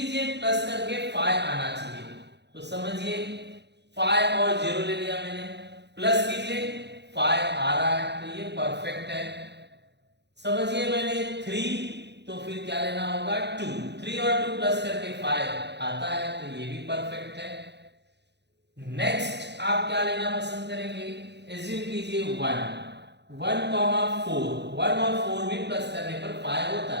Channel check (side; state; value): left; late; 0.50 ms